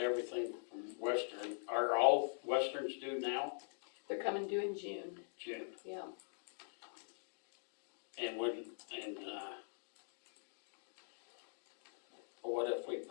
everything from Western, are all Westerns due now? they're coming due in June, June. yeah. And what if we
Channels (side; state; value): right; silent; digital silence